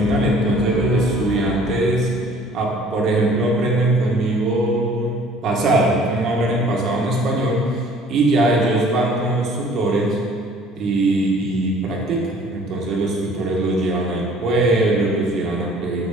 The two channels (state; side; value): normal; both; correlation 0.53